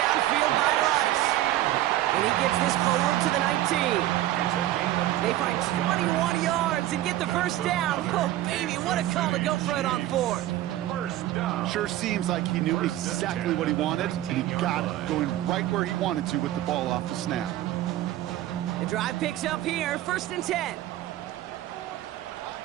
by Rice. And he gets this forward to the 19. They find 21 yards and get the first down. Oh, baby, what a call to go for it on 4th. Sure seems like he knew exactly what he wanted, and he got it, going right where he wanted to with the ball off the snap. The drive picks up here, 1st and 10.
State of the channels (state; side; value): quieter; left; 14.5 dB